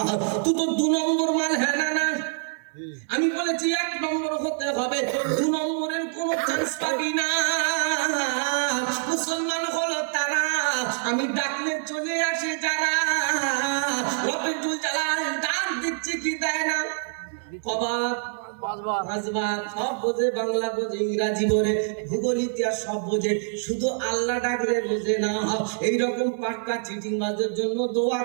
তুই তো 2 নম্বর মাল। হ্যাঁ না না, আমি বলেছি 1 নম্বর হতে হবে, 2 নম্বরের কোনো চান্স পাবি না। মুসলমান হলো তারা আমি ডাকলে চলে আসে যারা, রবিউল জালাল ডাক দিচ্ছে কি দেয় না, কবাব সব বোঝে, বাংলা বোঝে, ইংরাজি বোঝে, ভূগোল ইতিহাস সব বোঝে, শুধু আল্লাহ ডাকলে বোঝে না। এইরকম পাক্কা চিটিং বাজের জন্য দোয়া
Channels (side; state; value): left; silent; digital silence